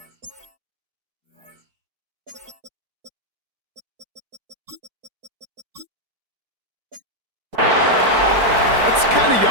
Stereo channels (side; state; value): left; late; 4.5 ms